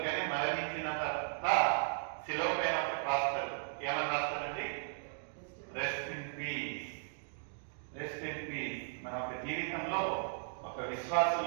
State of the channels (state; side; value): silent; left; digital silence